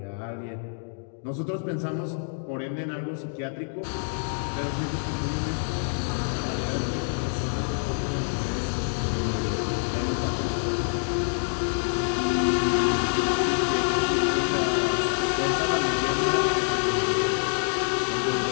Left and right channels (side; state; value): right; silent; digital silence